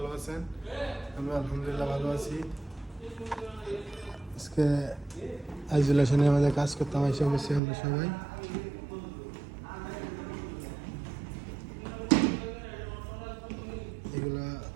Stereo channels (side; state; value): left; drops out; at 7.6 s